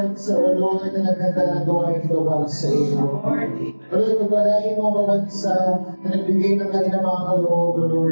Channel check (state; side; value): inverted; both; correlation -1.00